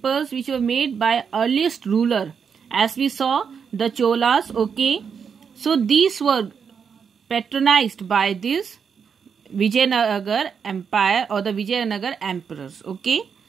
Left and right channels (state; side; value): quieter; left; 6.6 dB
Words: which were made by earliest ruler. As we saw, the Cholas, okay. So these were patronized by this Vijayanagar Empire or the Vijayanagar emperors, okay.